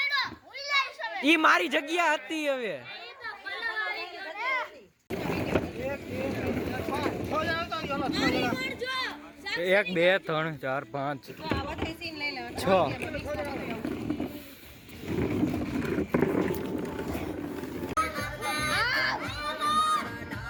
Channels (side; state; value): both; identical; correlation 1.00